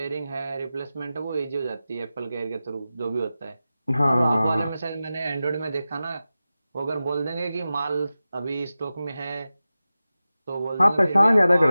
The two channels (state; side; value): inverted; both; correlation -0.94